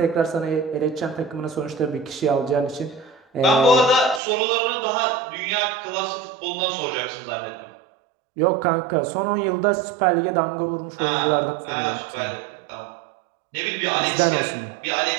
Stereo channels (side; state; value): left; drops out; at 4.2 s